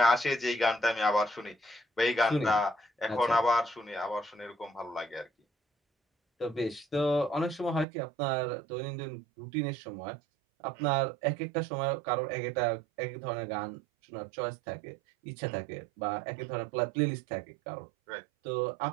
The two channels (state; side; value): drops out; left; at 7.9 s